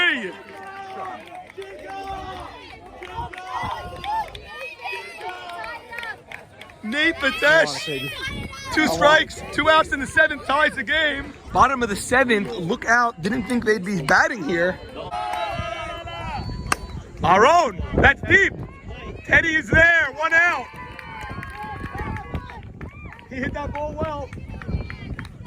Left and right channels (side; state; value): both; identical; correlation 1.00